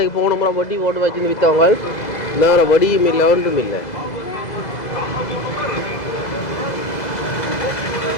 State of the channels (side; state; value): right; late; 2.0 ms